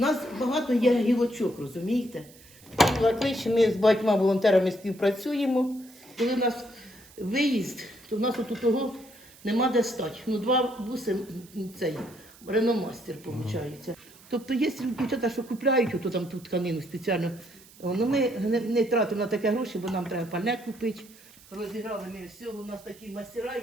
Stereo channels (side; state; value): right; noise; hiss, 23 dB below the sound